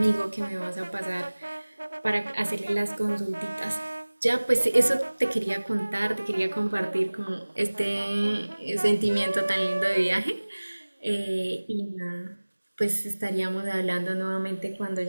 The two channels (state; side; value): inverted; both; correlation -1.00